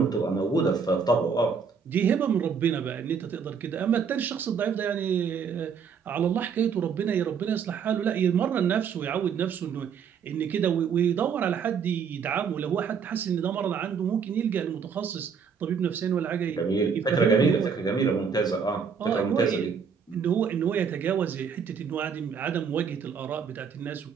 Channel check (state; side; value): quieter; left; 6.4 dB